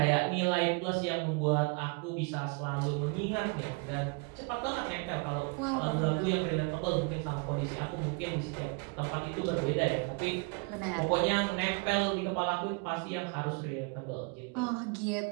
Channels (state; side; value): quieter; left; 31.5 dB